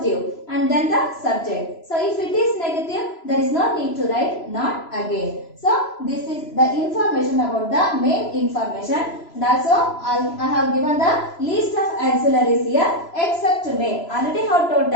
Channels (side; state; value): right; late; 3.0 ms